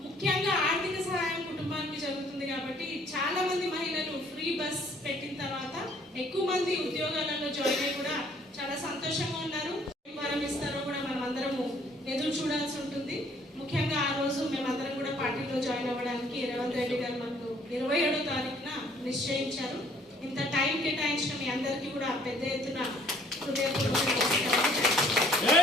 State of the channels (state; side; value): normal; both; correlation 0.60